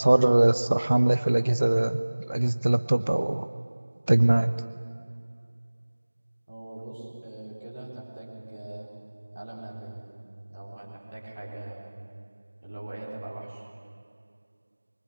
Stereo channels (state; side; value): inverted; both; correlation -1.00